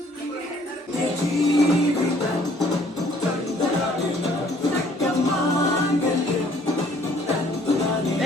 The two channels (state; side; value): normal; both; correlation 0.60